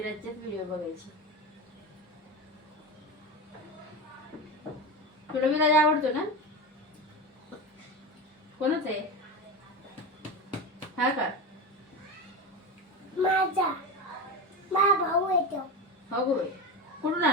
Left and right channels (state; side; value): normal; both; correlation 0.22